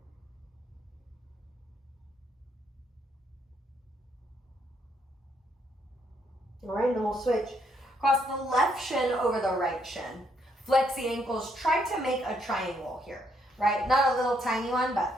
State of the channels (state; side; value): normal; both; correlation 0.73